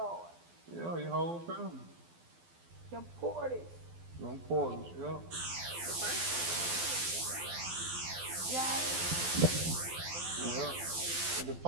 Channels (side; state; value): left; late; 12 ms